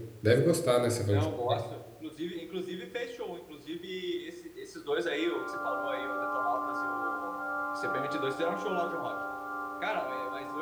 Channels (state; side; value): identical; both; correlation 1.00